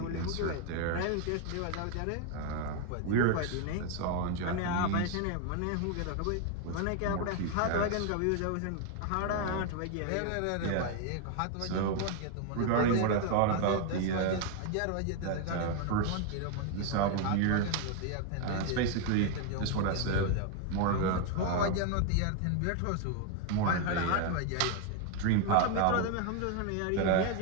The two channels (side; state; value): both; different; correlation 0.01